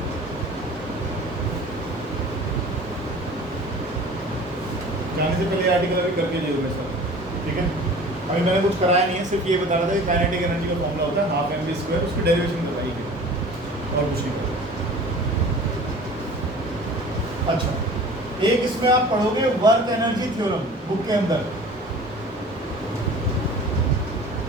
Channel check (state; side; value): normal; both; correlation 0.43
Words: जाने से पहले आर्टिकल अभी करके जाइएगा सर, ठीक है। अभी मैंने कुछ कराया नहीं है, सिर्फ ये बता रहा था कि काइनेटिक एनर्जी का फॉर्मूला होता है हाफ mv स्क्वायर, उसकी डेरिवेशन बताई है और कुछ नहीं करा। अच्छा, एक इसमें आप पढ़ोगे वर्क एनर्जी थ्योरम बुक के अंदर।